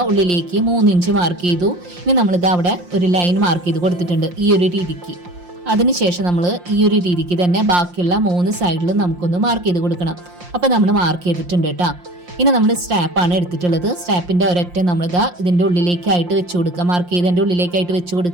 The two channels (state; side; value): late; left; 5.7 ms